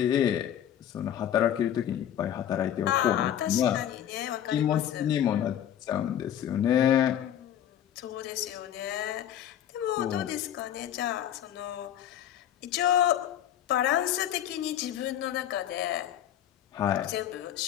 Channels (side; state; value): right; quieter; 10.7 dB